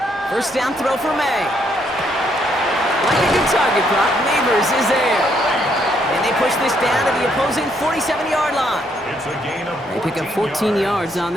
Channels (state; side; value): normal; both; correlation 0.72